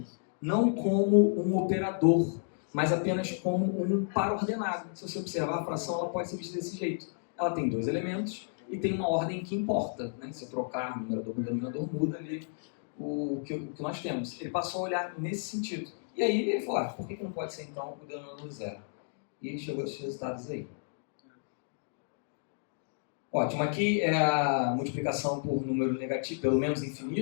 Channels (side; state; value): right; silent; digital silence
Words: não como um operador, mas apenas como um par ordenado. Se você observar, a fração ela pode ser vista desse jeito. Ela tem dois elementos e tem uma ordem que importa, né? Se eu trocar numerador com denominador, muda ali o que nós temos. Ele passou a olhar nesse sentido. E aí ele falou, por que não pode ser então o denominador zero? E ele chegou a esses resultados aí. Ótimo, aqui é a multiplicação por número negativo, pelo menos